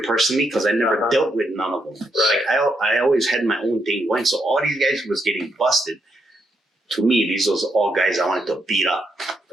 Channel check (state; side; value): normal; both; correlation 0.79